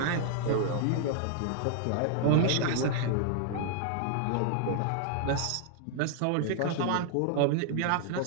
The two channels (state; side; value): different; both; correlation 0.00